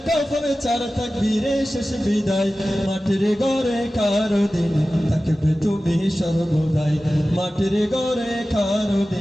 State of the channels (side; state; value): both; normal; correlation 0.95